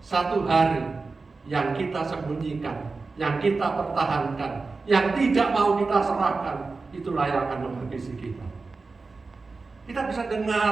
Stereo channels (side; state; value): left; quieter; 4.0 dB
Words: hari yang kita sembunyikan, yang kita pertahankan, yang tidak mau kita serahkan, itulah yang akan menghabisi kita. Kita bisa